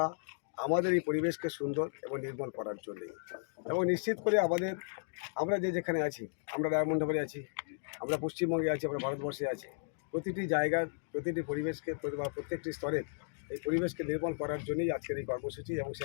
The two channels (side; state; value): right; silent; digital silence